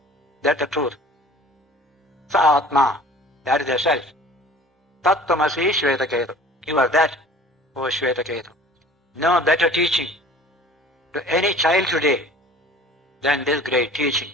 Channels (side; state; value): both; normal; correlation 0.46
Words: that's the truth. Sa atma, that is the self. Tat tamasi shvetaketu, you are that, O Shvetaketu. No better teaching to any child today than this great teaching.